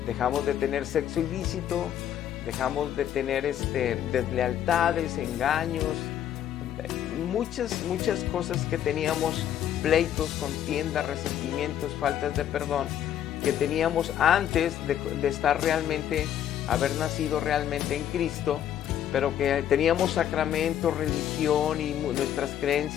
dejamos de tener sexo ilícito, dejamos de tener deslealtades, engaños, muchas cosas que teníamos, pleitos, contiendas, resentimientos, faltas de perdón, que teníamos antes de estar realmente, haber nacido realmente en Cristo, pero que teníamos sacramentos, religión y nuestras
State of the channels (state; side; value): quieter; right; 10.4 dB